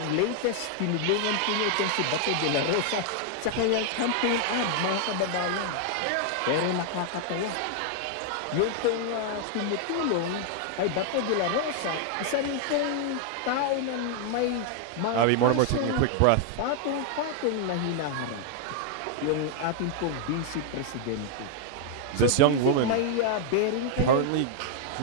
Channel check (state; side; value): different; both; correlation 0.00